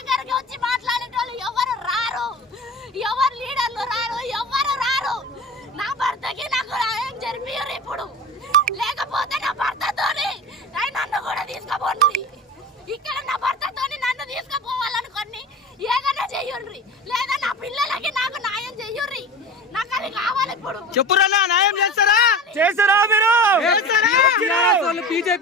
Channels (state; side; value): normal; both; correlation 0.32